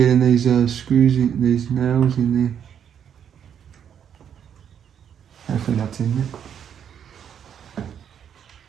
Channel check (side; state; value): left; quieter; 8.6 dB